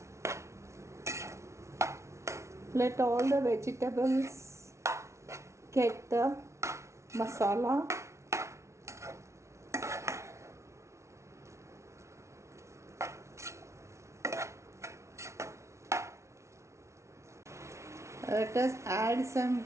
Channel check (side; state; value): left; late; 0.13 ms